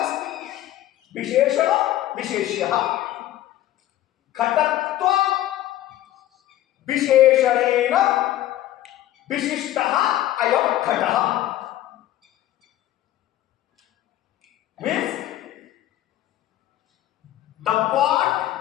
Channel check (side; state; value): right; quieter; 13.9 dB